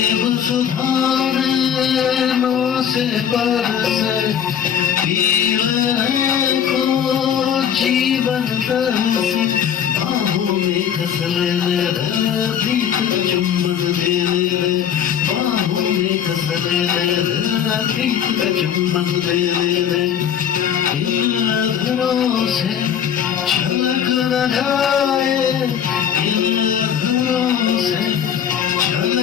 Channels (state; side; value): quieter; right; 8.8 dB